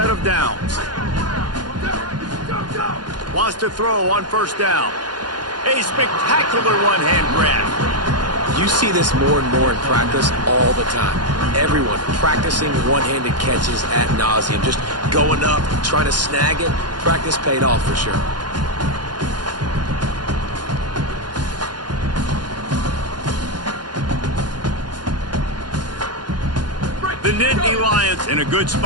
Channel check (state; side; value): late; left; 0.70 ms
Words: of downs. Wants to throw on first down. A spectacular one-hand grab. You see this more and more in practice all the time. Everyone practicing one-handed catches ad nauseum, just going up, trying to snag it. Practice paid off for sure. The Nittany Lions in a good